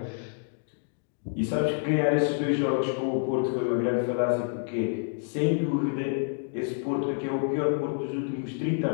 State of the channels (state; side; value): silent; right; digital silence